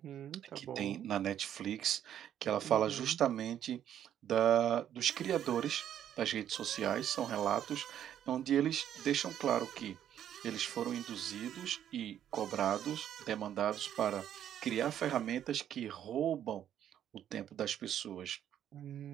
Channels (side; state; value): left; quieter; 10.4 dB